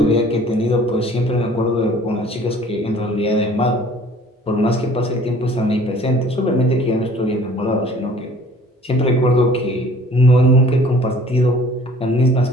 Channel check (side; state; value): both; normal; correlation 0.51